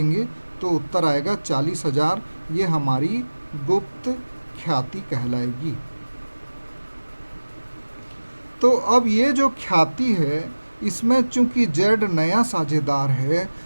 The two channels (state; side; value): inverted; both; correlation -1.00